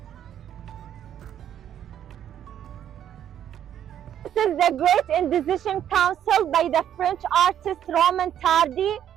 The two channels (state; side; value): quieter; left; 10.2 dB